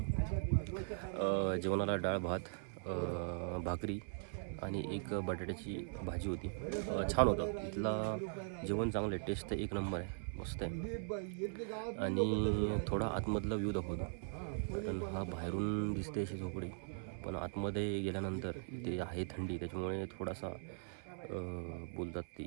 जेवणाला डाळ भात, भाकरी आणि एक बटाट्याची भाजी होती. छान होतं इथला जेवण, चांगलं आहे. टेस्ट तर एक नंबर आहे, मस्त आहे. आणि थोडा आतमधला व्ह्यू दाखवतो, कारण हा बाहेरून दिसते अशी झोपडी, पण आतमध्ये गेल्यानंतर इथे आहे थंडी, त्याच्यामुळे थोडासा बोलतात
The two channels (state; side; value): silent; left; 51 dB below the other